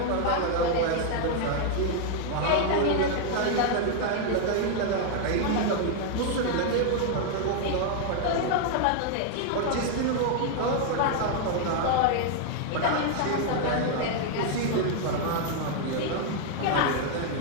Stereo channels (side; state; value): both; different; correlation 0.00